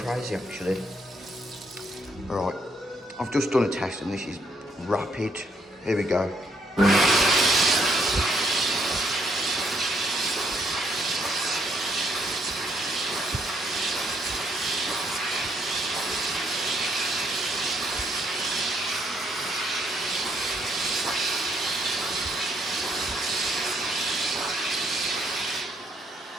actually. All right, I've just done a test, and this is rapid. Here we go.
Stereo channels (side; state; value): both; normal; correlation 0.71